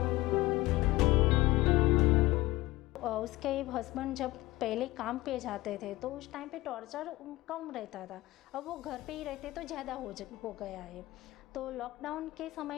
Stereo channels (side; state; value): right; quieter; 18.7 dB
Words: उसके हस्बैंड जब पहले काम पे जाते थे तो उस टाइम पे टॉर्चर कम रहता था, अब वो घर पे ही रहते तो ज़्यादा हो गया है। तो लॉकडाउन के